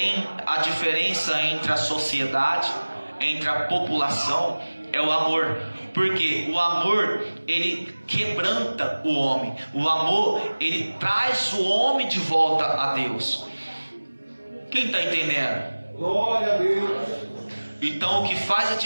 diferença entre a sociedade entre a população é o amor. Porque o amor, ele quebranta o homem. O amor, ele traz o homem de volta a Deus. Quem está entendendo? Glória a Deus. Então o que faz a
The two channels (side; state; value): both; inverted; correlation -1.00